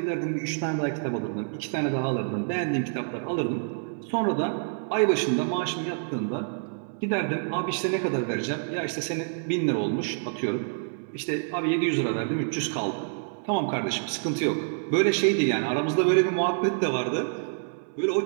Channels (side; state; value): left; silent; 60 dB below the other